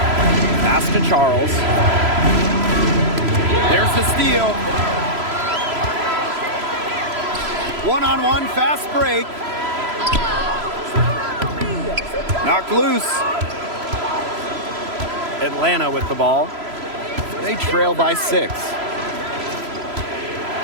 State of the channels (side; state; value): left; late; 3.0 ms